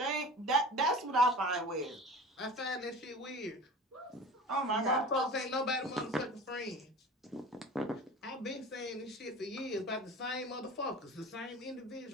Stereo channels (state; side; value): normal; both; correlation 0.38